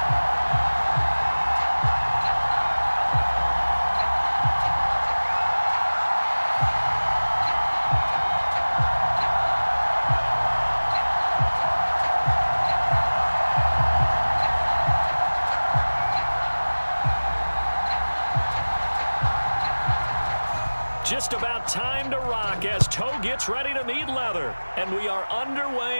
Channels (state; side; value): inverted; both; correlation -1.00